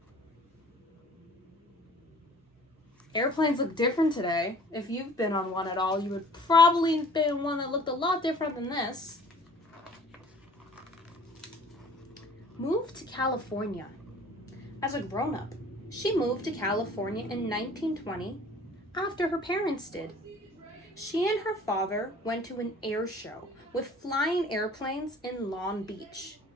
Airplanes look different today. If you've been on one at all, you would probably have been one that looked a lot different than this. Moved to California. As a grown-up, she moved to California in 1920 after her parents did. She and her father went to an air show with flying airplanes in Long Beach.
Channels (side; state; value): both; normal; correlation 0.49